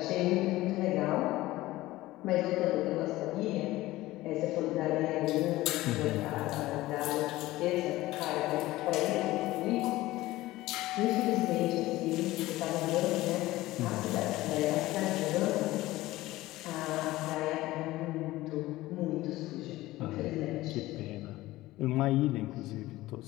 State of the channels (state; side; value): quieter; right; 17.5 dB